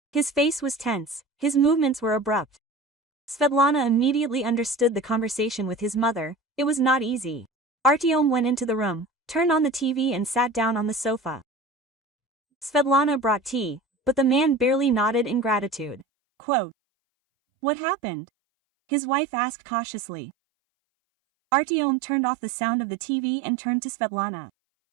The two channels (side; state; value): left; drops out; at 16.1 s